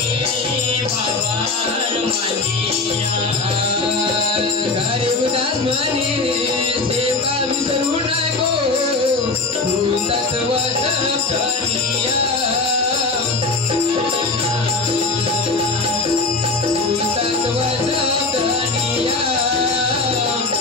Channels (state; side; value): quieter; right; 3.6 dB